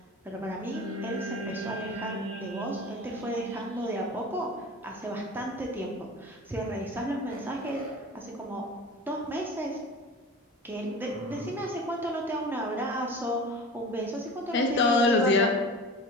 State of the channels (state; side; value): normal; both; correlation 0.36